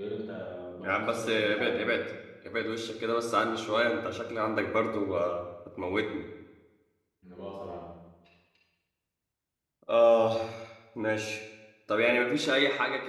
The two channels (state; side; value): identical; both; correlation 1.00